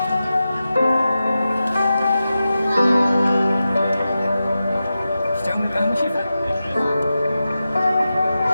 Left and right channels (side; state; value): both; inverted; correlation -0.92